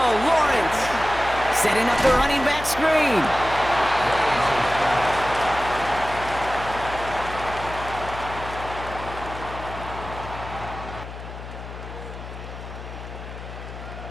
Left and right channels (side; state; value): left; noise; hum, 11 dB below the sound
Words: Setting up the running back screen.